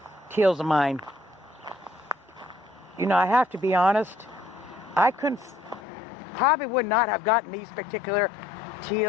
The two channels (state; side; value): drops out; right; at 5.8 s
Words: teals of mine. You know, I have to be honest, I probably would not have gotten these particular